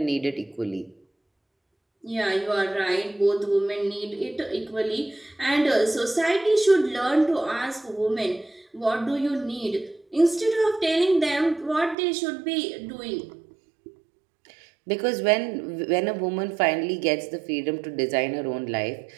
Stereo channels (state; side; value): drops out; left; at 12.0 s